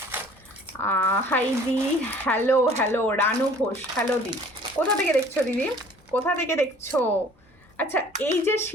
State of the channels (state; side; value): normal; both; correlation 0.52